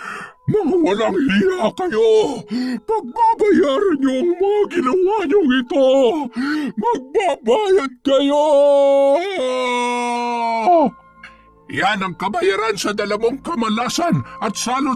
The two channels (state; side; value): identical; both; correlation 1.00